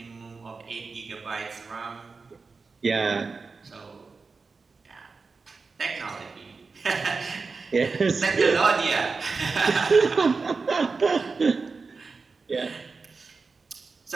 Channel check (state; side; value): quieter; left; 4.4 dB